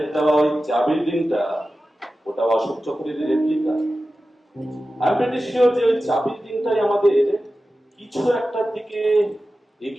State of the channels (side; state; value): both; normal; correlation 0.94